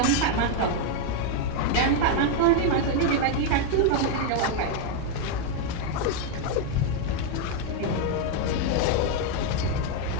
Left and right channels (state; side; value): different; both; correlation 0.01